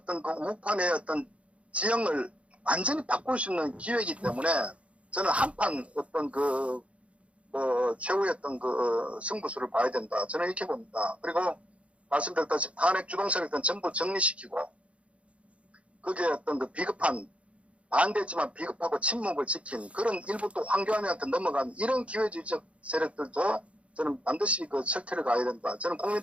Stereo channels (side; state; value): left; late; 0.062 ms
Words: 그 우판의 어떤 지형을 완전히 바꿀 수 있는 기회이기 때문에 저는 한판 어떤 최후의 어떤 승부수를 봐야 된다. 저는 이렇게 봅니다. 그리고 말씀드렸다시피 탄핵 주동세력들은 전부 정리시키고 그게 어떤 그 비겁한 반대했지만 비겁하고 침묵을 지킨 그런 일부 또 황교안한테 넘어간 이런 기회주의적 세력들도 저는 반드시 그 철퇴를 가야 된다. 저는